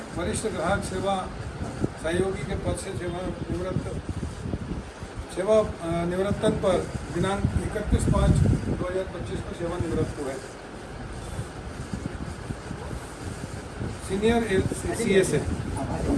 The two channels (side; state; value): both; identical; correlation 1.00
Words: वरिष्ठ ग्राहक सेवा सहयोगी के पद से निवृत्तन पर दिनांक 31/5/2025 को सेवानिवृत्त हुए। सीनियर सीएस है।